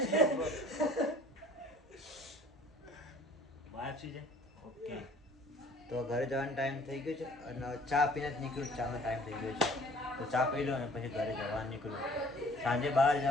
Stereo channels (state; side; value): normal; both; correlation 0.53